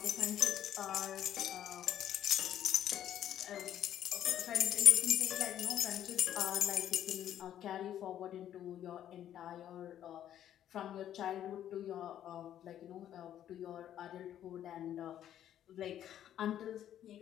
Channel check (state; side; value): quieter; right; 11.0 dB